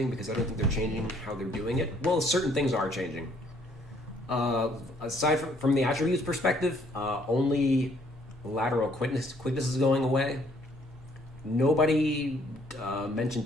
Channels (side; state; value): both; normal; correlation 0.64